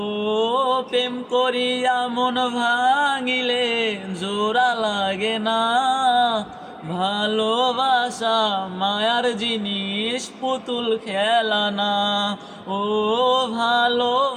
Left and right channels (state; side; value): identical; both; correlation 1.00